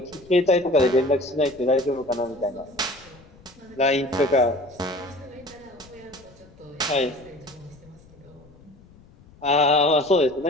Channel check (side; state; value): left; noise; rumble, 25 dB below the sound